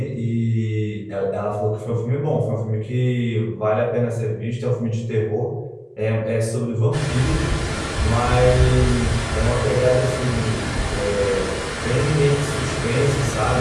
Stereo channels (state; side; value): identical; both; correlation 1.00